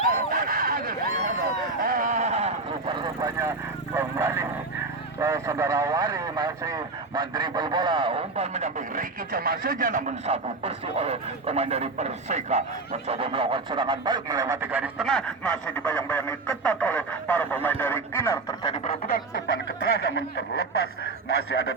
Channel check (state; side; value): quieter; left; 3.6 dB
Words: Rupa-rupanya kembali saudara Wari masih mendribel bola, umpan mendamping Ricky Jo maksudnya, namun sapu bersih oleh pemain dari Perseka. Mencoba melakukan serangan balik melewati garis tengah, masih dibayang-bayangi ketat oleh para pemain dari Kinar. Terjadi perebutan, umpan ke tengah namun terlepas. Masih ada